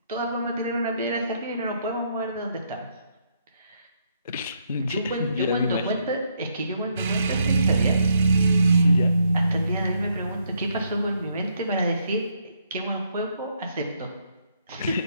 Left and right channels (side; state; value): both; inverted; correlation -0.74